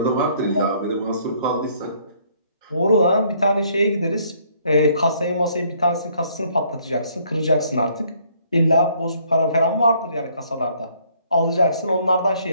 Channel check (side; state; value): both; inverted; correlation -0.64